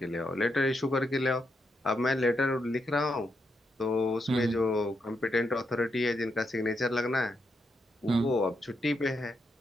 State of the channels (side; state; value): both; normal; correlation 0.82